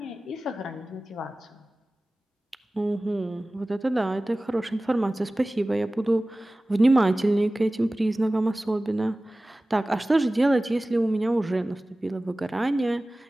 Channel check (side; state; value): both; normal; correlation 0.97